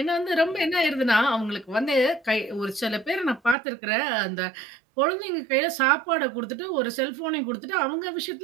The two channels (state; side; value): drops out; left; at 3.6 s